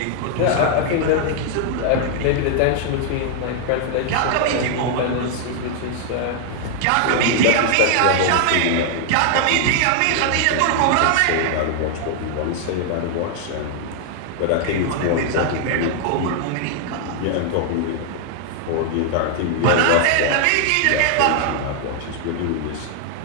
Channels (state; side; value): different; both; correlation 0.00